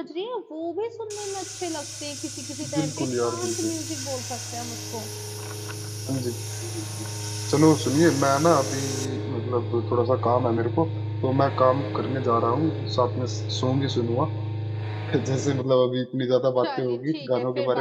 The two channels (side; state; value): both; identical; correlation 1.00